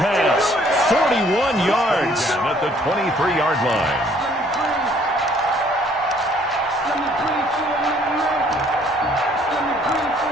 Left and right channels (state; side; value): normal; both; correlation 0.61